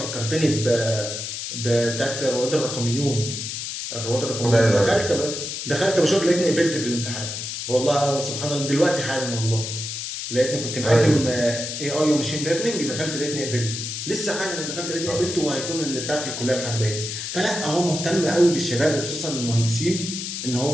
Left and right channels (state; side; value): noise; left; hiss, 5 dB below the sound